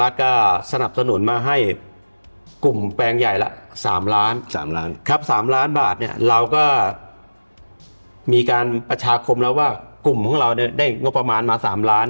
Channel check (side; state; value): both; inverted; correlation -1.00